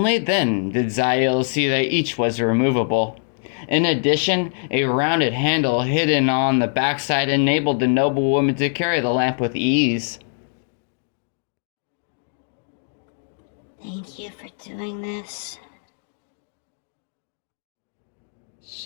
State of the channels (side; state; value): right; silent; digital silence